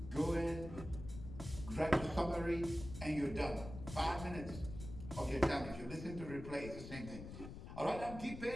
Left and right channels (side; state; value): left; noise; rumble, 10 dB below the sound